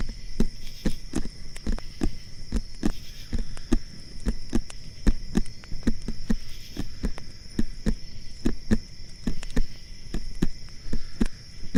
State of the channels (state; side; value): identical; both; correlation 1.00